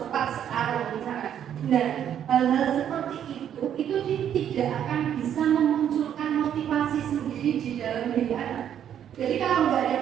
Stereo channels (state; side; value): quieter; left; 9.7 dB